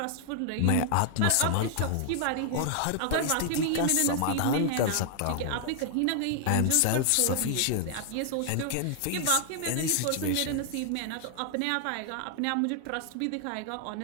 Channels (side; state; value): both; different; correlation 0.00